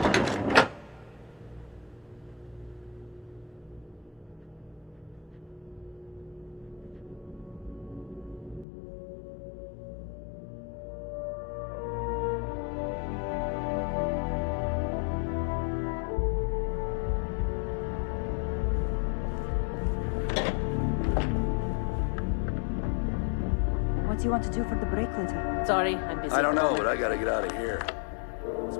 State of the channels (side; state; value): right; drops out; at 8.7 s